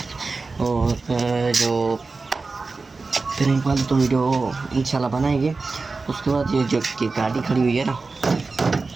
और जो फिर एक बार तो वीडियो इंशाल्लाह बनाएंगे। उसके बाद ये जो की गाड़ी खड़ी हुई है ना,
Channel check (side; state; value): left; quieter; 4.0 dB